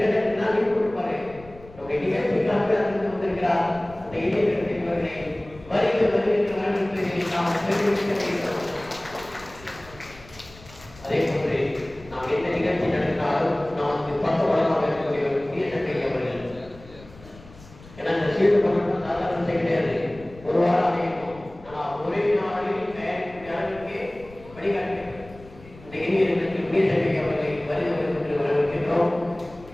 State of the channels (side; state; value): left; noise; rumble, 21 dB below the sound